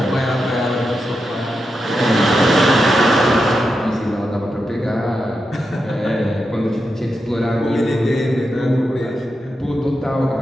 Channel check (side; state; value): both; normal; correlation 0.87